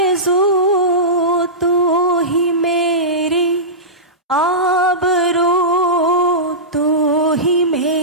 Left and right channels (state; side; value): normal; both; correlation -0.17